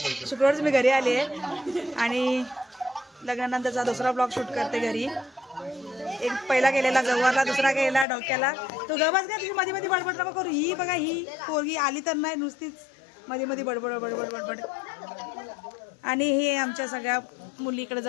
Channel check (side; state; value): right; drops out; at 8.1 s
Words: शुक्रवारच मी घरी आली आहे. आणि लग्नानंतरचा दुसरा ब्लॉग शूट करते घरी. एक पहिला केलेला गवारला, दुसरा केलेला डोक्याला. तो गवाच का तुझी मध्ये मध्ये बडबड नको करू. ही बघा, ही पोरगी आली तर नाही, नुसतीच मध्ये मध्ये बडबड बडबड बडबड. आणि हे आमच्या सगळ्या मुली इकडे